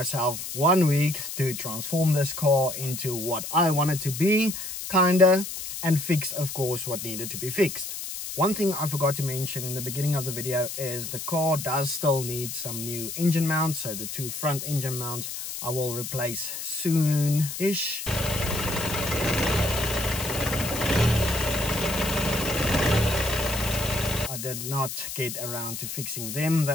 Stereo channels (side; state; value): left; noise; hiss, 7 dB below the sound